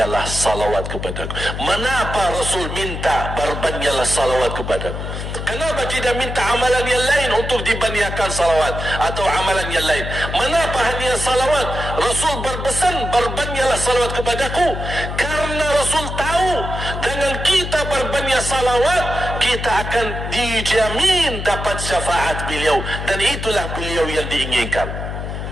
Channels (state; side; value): noise; left; hum, 6 dB below the sound